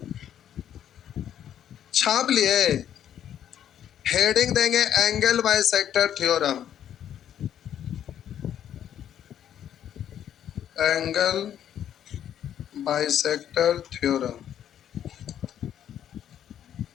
छाप लिए, हेडिंग देंगे angle bisector theorem, angle bisector theorem.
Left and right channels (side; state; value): right; quieter; 10.1 dB